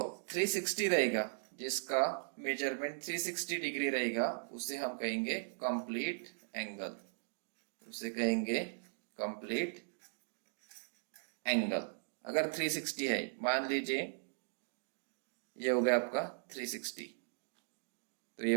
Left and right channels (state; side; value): silent; left; digital silence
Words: 360 रहेगा, जिसका मेजरमेंट 360 डिग्री रहेगा, उसे हम कहेंगे कंप्लीट एंगल, उसे कहेंगे कंप्लीट एंगल। अगर 360 है, मान लीजिए ये हो गया आपका 360, तो ये